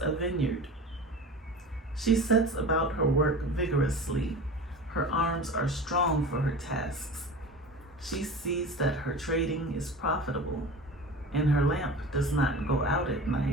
a vineyard. She sets about her work vigorously. Her arms are strong for her tasks. She sees that her trading is profitable, and her lamp does not go out at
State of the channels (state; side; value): normal; both; correlation 0.34